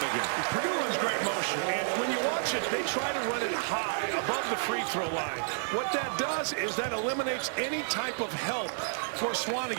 Purdue runs great motion, and when you watch it, they try to run it high above the free throw line. What that does is that eliminates any type of help for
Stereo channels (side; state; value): left; silent; digital silence